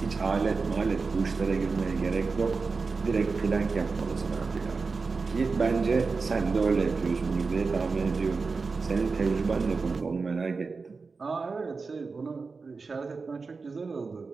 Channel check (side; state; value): left; quieter; 4.4 dB